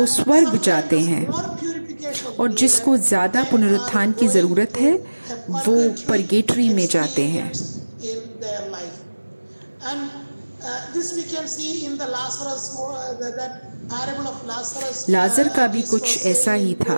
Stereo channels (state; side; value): inverted; both; correlation -1.00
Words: स्वर्ग जाते हैं, और जिसको ज़्यादा पुनरुत्थान की ज़रूरत है वो परगेटरी में जाते हैं। लाजर का भी कुछ ऐसा ही